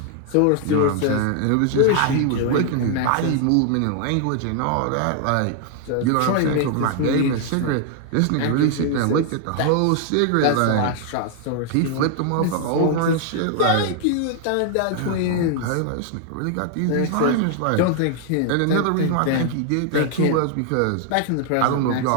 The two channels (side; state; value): both; different; correlation 0.00